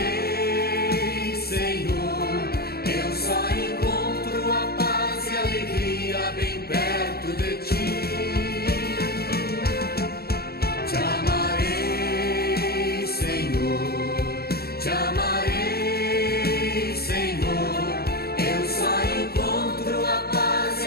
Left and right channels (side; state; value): right; late; 0.45 ms